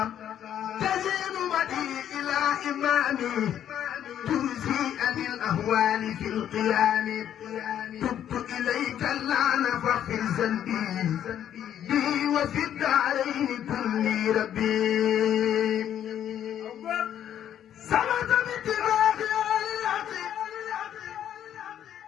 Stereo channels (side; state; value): right; quieter; 10.3 dB